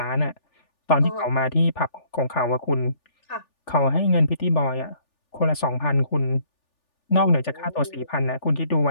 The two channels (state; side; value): late; right; 3.4 ms